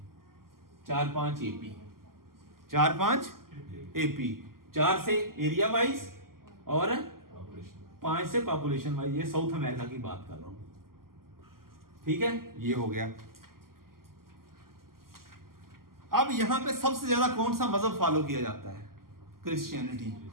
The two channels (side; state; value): left; late; 0.92 ms